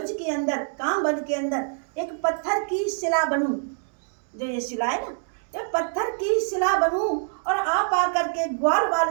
के अंदर, कामवन के अंदर एक पत्थर की शिला बनूं। जो ये शिला है ना, ये पत्थर की शिला बनूं, और आप आकर के ग्वाल बाल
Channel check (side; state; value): left; silent; digital silence